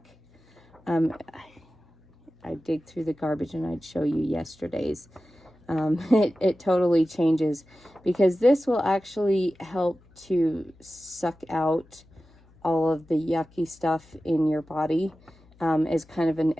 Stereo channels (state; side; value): noise; left; hum, 29 dB below the sound